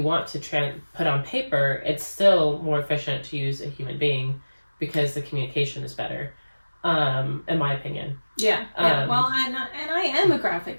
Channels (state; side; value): inverted; both; correlation -1.00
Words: want to put on paper, it's still more efficient to use a human being, because the communication is better, in my opinion. Yeah. Well, and I am a